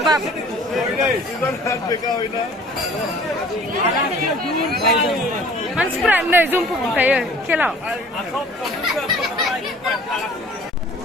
मानसिफोरा नै जुमफु बुंखायो खेलाव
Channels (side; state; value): both; normal; correlation 0.50